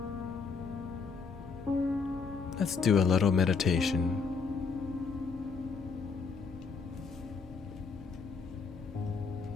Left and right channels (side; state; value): right; quieter; 5.0 dB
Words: Let's do a little meditation.